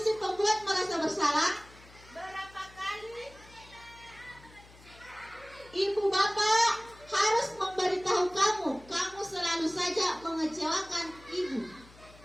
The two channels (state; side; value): noise; left; hum, 23 dB below the sound